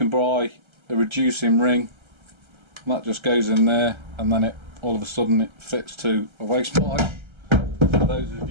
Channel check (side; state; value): left; late; 1.3 ms